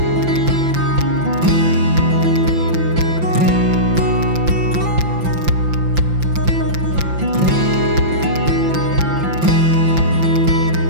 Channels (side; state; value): left; late; 5.8 ms